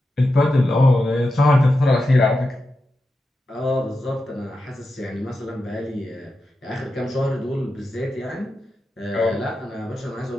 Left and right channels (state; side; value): normal; both; correlation 0.90